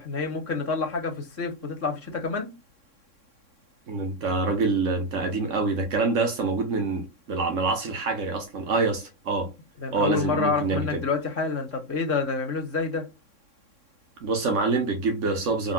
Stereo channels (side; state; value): left; late; 3.6 ms